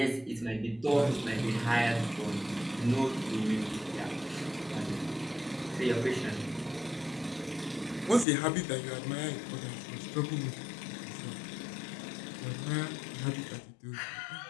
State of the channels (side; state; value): right; drops out; at 8.2 s